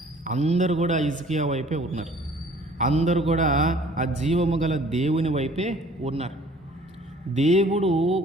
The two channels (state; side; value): normal; both; correlation 0.53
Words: అందరూ కూడా హిజ్కియా వైపే ఉన్నారు, అందరూ కూడా ఆ జీవము గల దేవుని వైపే ఉన్నారు.